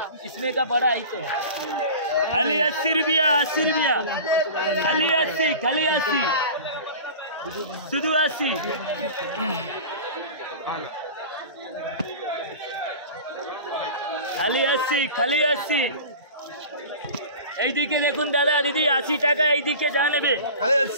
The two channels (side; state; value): both; inverted; correlation -0.36